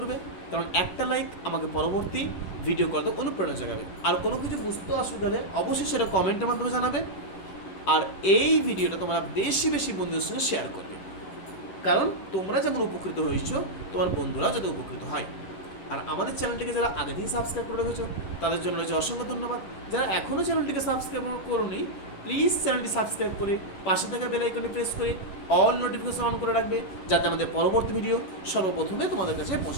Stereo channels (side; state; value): right; late; 11 ms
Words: কারণ একটা লাইক আমাকে পরবর্তী ভিডিও করতে অনুপ্রেরণা জাগাবে। আর কোনো কিছু বুঝতে অসুবিধা হলে অবশ্যই সেটা কমেন্টের মাধ্যমে জানাবে। আর এই ভিডিওটা তোমরা বেশি বন্ধুদের সঙ্গে শেয়ার করবে, কারণ তোমরা যেমন উপকৃত হয়েছো তোমার বন্ধুরাও যাতে উপকৃত হয়। আর আমাদের চ্যানেলটিকে যারা আগে থেকে সাবস্ক্রাইব করে রেখেছো তাদের জন্য রয়েছে অসংখ্য ধন্যবাদ। যারা এখনও চ্যানেলটিকে সাবস্ক্রাইব করোনি প্লিজ চ্যানেলটি সাবস্ক্রাইব করে পাশে থাকা বেল আইকনটি প্রেস করে অল নোটিফিকেশন অন করে রাখবে, যাতে আমাদের পরবর্তী ভিডিও সর্বপ্রথমে তোমাদের কাছে